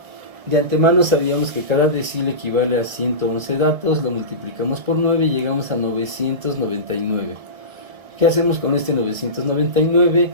De antemano sabíamos que cada decil equivale a 111 datos, lo multiplicamos por 9 y llegamos a 999. ¿Qué hacemos con este 999?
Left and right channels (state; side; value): late; left; 1.7 ms